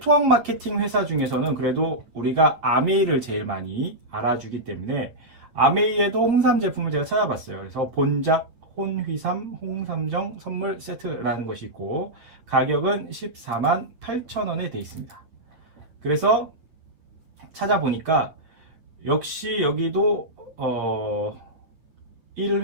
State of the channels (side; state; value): left; late; 9.0 ms